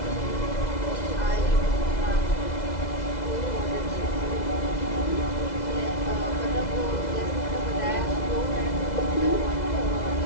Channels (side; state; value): right; late; 2.0 ms